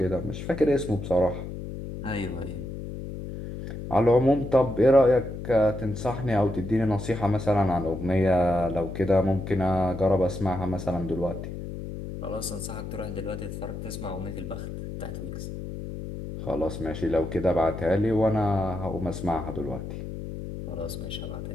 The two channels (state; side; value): noise; left; hum, 8 dB below the sound